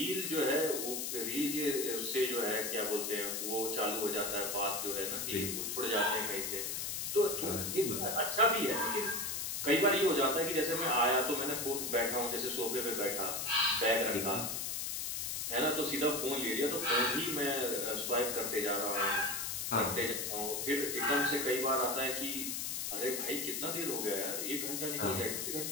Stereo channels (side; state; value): left; noise; hiss, 2 dB below the sound